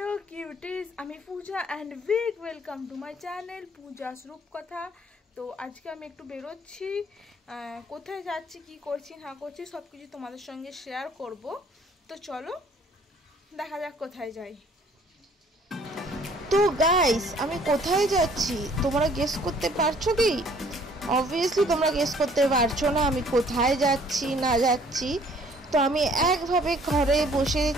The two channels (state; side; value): normal; both; correlation 0.58